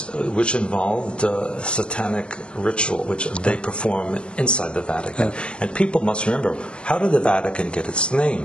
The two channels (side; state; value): right; late; 0.053 ms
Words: which involved satanic ritual, which they perform inside the Vatican. And people must remember, how did the Vatican get its